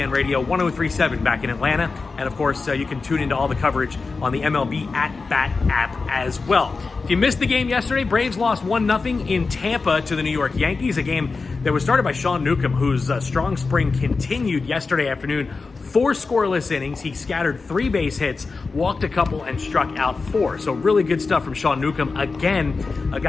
Radio 103.7 back in Atlanta. And of course, you can tune into all the coverage on the MLB At Bat app as well. If you missed the game yesterday, Braves lost 1-0 in Tampa to the New York Yankees, a game that was started by Sean Newcomb, whose strong spring continued yesterday afternoon. 4 scoreless innings. He scattered 3 base hits, walked a couple, and struck out 4. So really good stuff from Sean Newcomb. Again, a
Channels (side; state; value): right; quieter; 4.2 dB